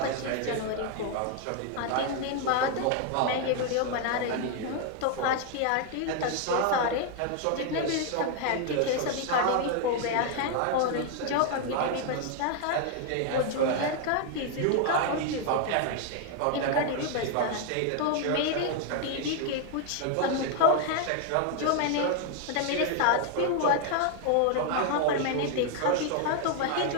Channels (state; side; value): different; both; correlation 0.00